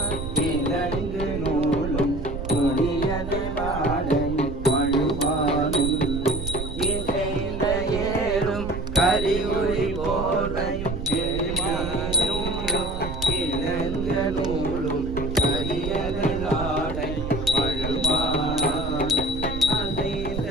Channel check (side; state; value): right; noise; rumble, 6 dB below the sound